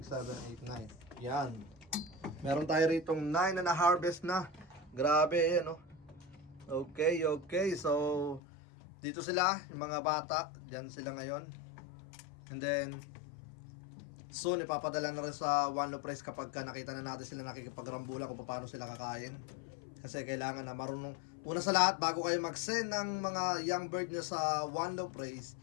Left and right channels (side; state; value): right; drops out; at 8.4 s